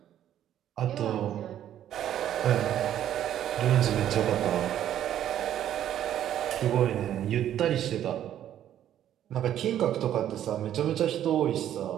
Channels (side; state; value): left; quieter; 11.1 dB